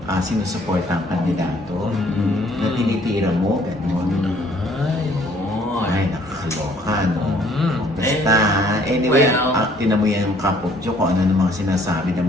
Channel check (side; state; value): both; normal; correlation 0.60